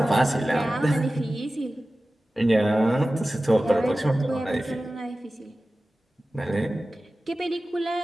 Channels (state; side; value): normal; both; correlation 0.96